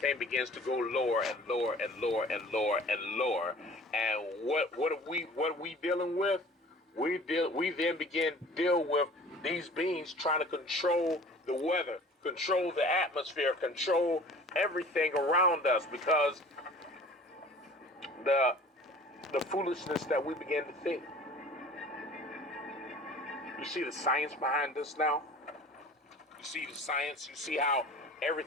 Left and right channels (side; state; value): both; normal; correlation 0.45